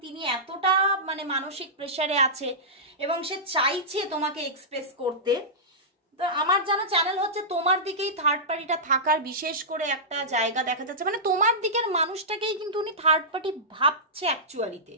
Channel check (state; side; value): normal; both; correlation -0.15